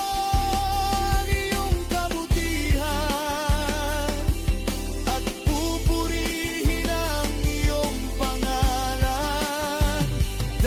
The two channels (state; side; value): identical; both; correlation 1.00